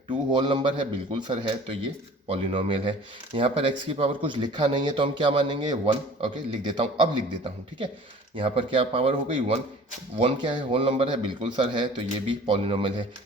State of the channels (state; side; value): normal; both; correlation 0.46